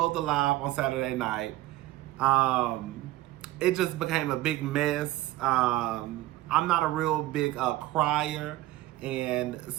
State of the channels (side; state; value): left; quieter; 16.8 dB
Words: the live on Saturday night. It just became a big mess. I'm not a real big crier, and